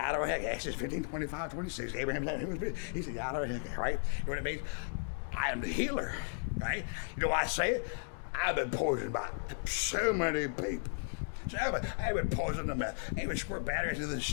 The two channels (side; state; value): right; silent; digital silence